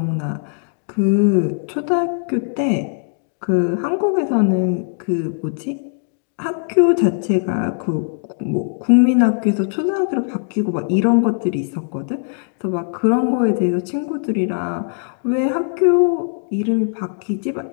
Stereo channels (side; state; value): right; silent; 63 dB below the other